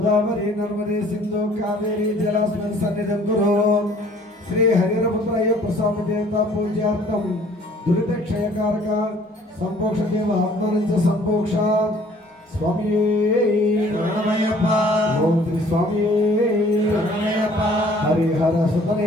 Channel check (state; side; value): normal; both; correlation 0.55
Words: నర్మదే సింధు కావేరీ జలాస్మిన్ సన్నిధం కురు శ్రీ హరిరపుత్రయ ప్రసాద దేవత పూజార్థం దురిత క్షయకారక సంపోక్ష దేవ ఆత్మనంచ సంపోక్ష స్వామి శరణమయ్యప్ప ఓం శ్రీ స్వామి శరణమయ్యప్ప హరిహర